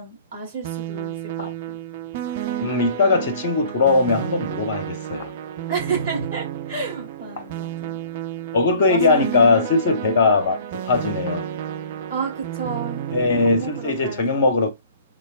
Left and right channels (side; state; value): both; inverted; correlation -0.51